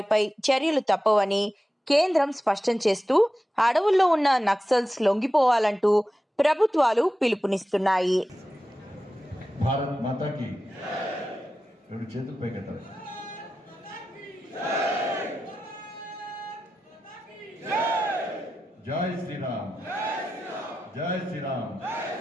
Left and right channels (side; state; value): both; normal; correlation 0.92